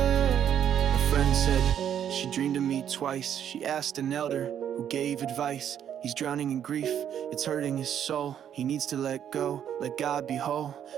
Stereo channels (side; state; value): left; quieter; 9.5 dB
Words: A friend said she dreamed of me twice. She asked an elder who gave advice. He's drowning in grief, it's hurting his soul. He needs to let go, let God be whole.